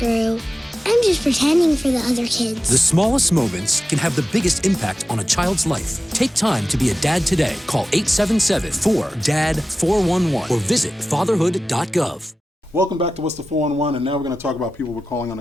I'm just pretending for the other kids. The smallest moments can have the biggest impact on a child's life. Take time to be a dad today. Call 877-4DAD-411 or visit fatherhood.gov. Welcome back to What's the 411, and now we're going to talk about people we're calling on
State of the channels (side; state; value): both; normal; correlation 0.94